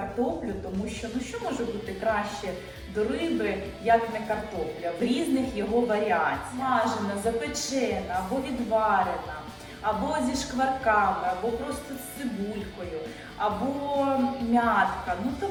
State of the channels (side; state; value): both; identical; correlation 1.00